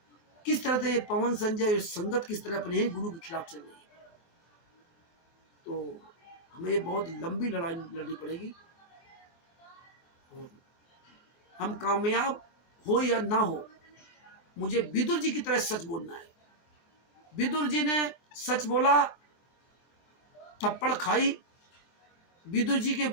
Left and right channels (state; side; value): late; right; 23 ms